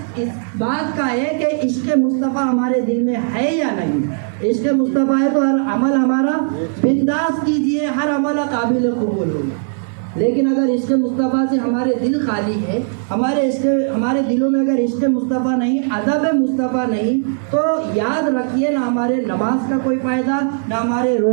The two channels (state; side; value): silent; left; 64 dB below the other